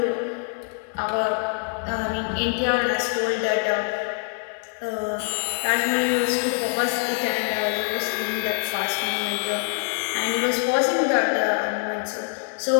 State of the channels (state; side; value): silent; right; 62 dB below the other